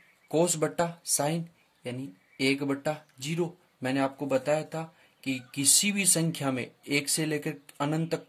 कोस बट्टा साइन यानी 1/0। मैंने आपको बताया था कि किसी भी संख्या में 1 से लेकर अनंत तक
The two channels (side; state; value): both; identical; correlation 1.00